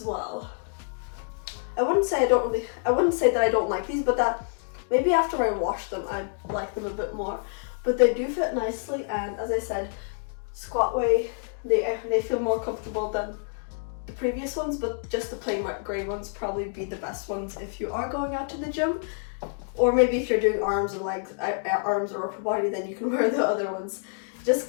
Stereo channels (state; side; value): silent; right; digital silence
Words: well. I wouldn't say that I don't like these, but that maybe after I wash them I like them a bit more. But they do fit nicely, and as I said, squat way, they feel more comfortable than the previous ones, but just the plain grey ones probably be the best ones if you are going out to the gym. Or maybe if you're doing arms or legs, arms or upper body, then you can wear the other ones. Just